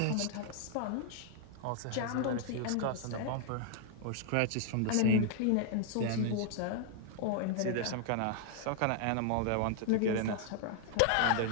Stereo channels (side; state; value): both; different; correlation -0.01